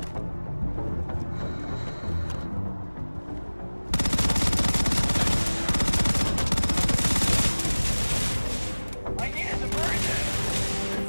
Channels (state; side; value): inverted; both; correlation -1.00